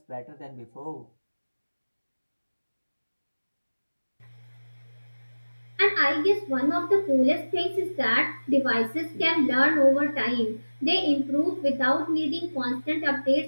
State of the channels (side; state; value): both; inverted; correlation -1.00